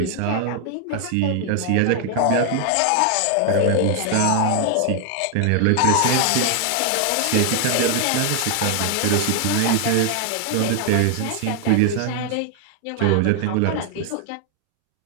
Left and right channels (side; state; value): both; different; correlation 0.00